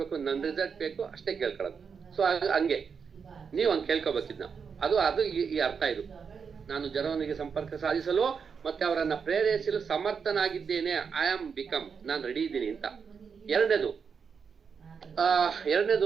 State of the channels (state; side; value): quieter; left; 6.1 dB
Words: ನನ್ನ ರಿಸಲ್ಟ್ ಬೇಕು ಅಷ್ಟೇ ಕೇಳ್ಕೊಳ್ಳೋದು. ಸೊ ಹಂಗೆ ನೀವು ಹಂಗೆ ಕೇಳ್ಕೊಬೇಕಿದ್ನ. ಅದು ಈ ಅರ್ಥ. ಇದು ನಾನು ಜನರೊಂದಿಗೆ ಸಂಪರ್ಕ ಸಾಧಿಸಲು ಮತ್ತೆ ಅವರನ್ನ ಪ್ರೇರೇಪಿಸಲು ಸಮರ್ಥನಾಗಿದ್ದೇನೆ. ಐ ಆಮ್ ಬಿಕಮ್, ನಾನು ರೆಡಿ ಇದ್ದೀನಿ ಅಂತ. ಎರಡನೇದು